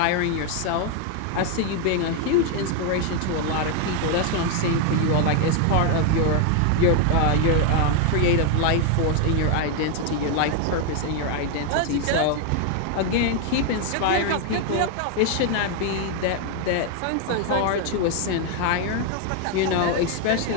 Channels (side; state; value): both; different; correlation 0.01